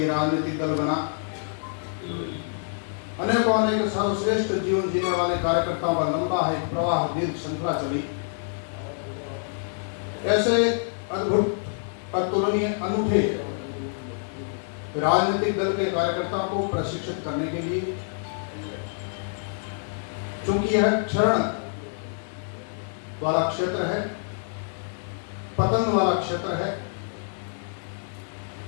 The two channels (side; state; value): right; silent; digital silence